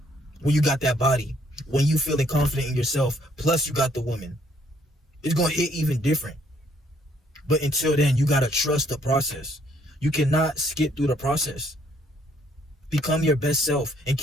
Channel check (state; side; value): normal; both; correlation 0.67